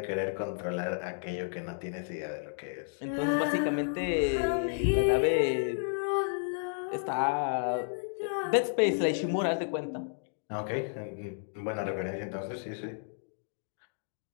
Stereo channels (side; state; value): right; silent; digital silence